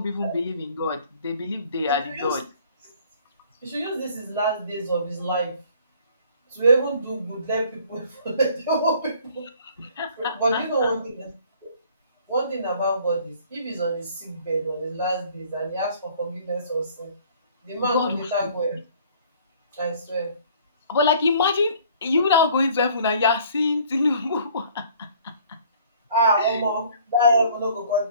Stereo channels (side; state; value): both; inverted; correlation -0.56